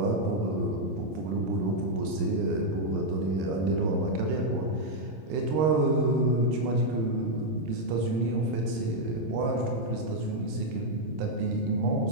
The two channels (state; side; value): late; left; 26 ms